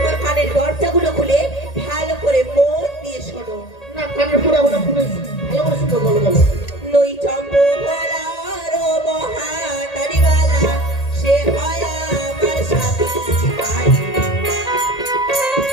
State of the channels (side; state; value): right; late; 1.8 ms